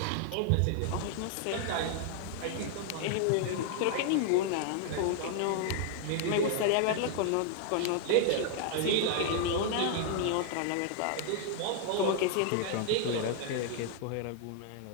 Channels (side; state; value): both; different; correlation 0.00